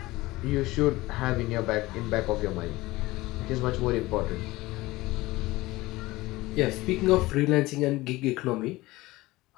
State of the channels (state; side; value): quieter; right; 19.5 dB